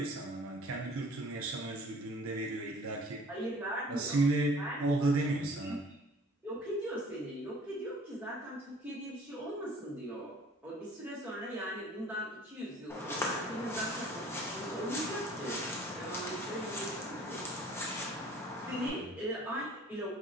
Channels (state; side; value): normal; both; correlation 0.51